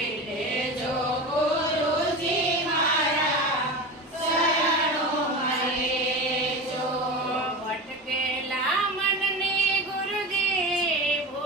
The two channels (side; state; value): both; normal; correlation 0.27